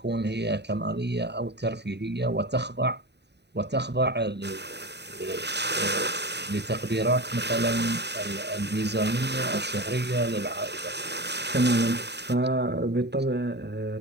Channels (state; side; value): late; left; 0.49 ms